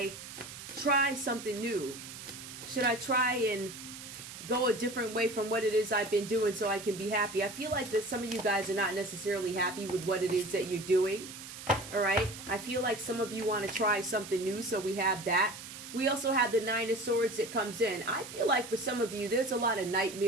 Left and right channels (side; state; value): right; noise; hiss, 12 dB below the sound